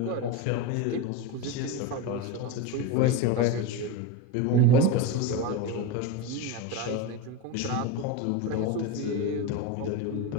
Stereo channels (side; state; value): both; different; correlation 0.07